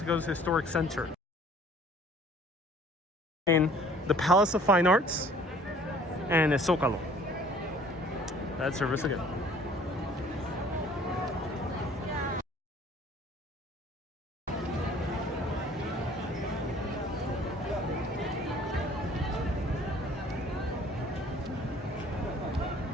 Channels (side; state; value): both; normal; correlation 0.53